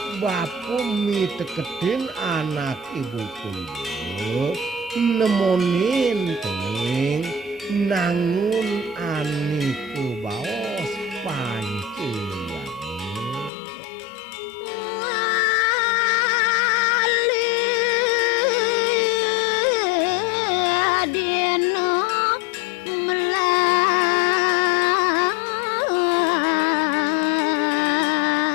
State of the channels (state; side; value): drops out; right; at 13.5 s